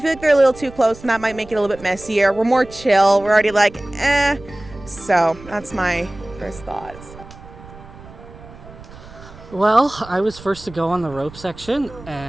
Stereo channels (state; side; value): noise; right; rumble, 18 dB below the sound